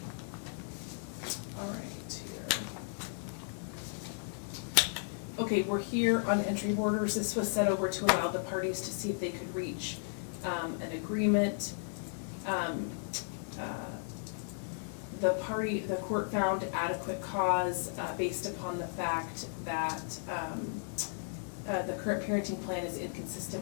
Okay, we're here on entry orders. This was set over to allow the parties to see if they could reach an agreement. The court found adequate cause based upon the fact that the current parenting plan is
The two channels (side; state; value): right; silent; digital silence